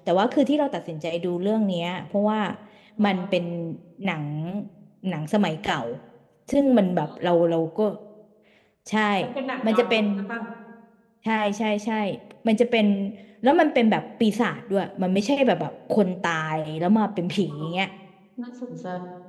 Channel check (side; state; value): both; identical; correlation 1.00